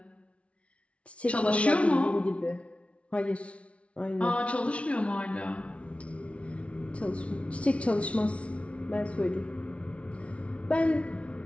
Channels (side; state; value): right; late; 0.062 ms